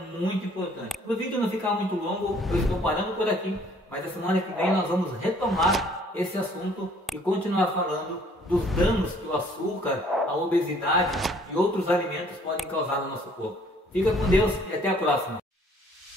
importante. Para o vídeo não ficar muito longo, eu estou parando por aqui, mas a semana que vem nós vamos retomar esse assunto e continuar falando dos danos que o açúcar, a obesidade e outros alimentos podem causar no nosso corpo. Fica com Deus e até a próxima.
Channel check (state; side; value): normal; both; correlation 0.59